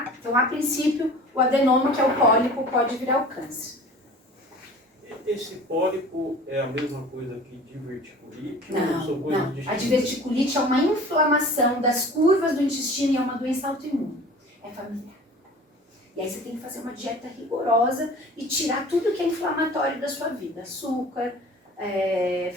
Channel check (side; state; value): both; normal; correlation 0.43